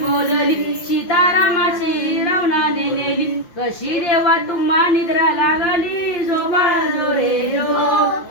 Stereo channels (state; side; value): late; right; 5.8 ms